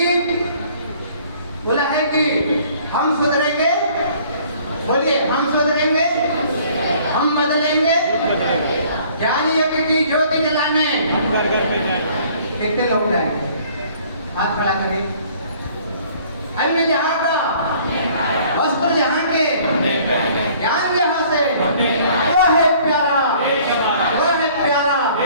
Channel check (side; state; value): both; inverted; correlation -0.56